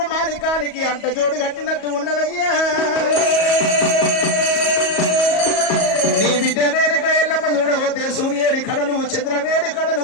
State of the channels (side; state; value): right; late; 37 ms